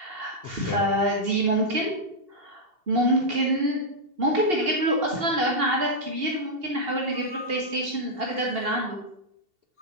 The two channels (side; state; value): left; late; 2.7 ms